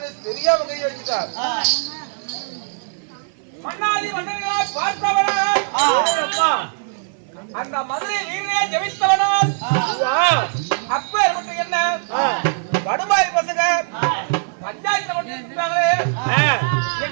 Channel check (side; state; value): left; silent; 59 dB below the other